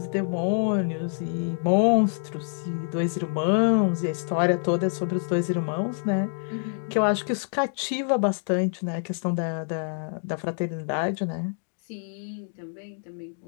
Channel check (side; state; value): right; silent; digital silence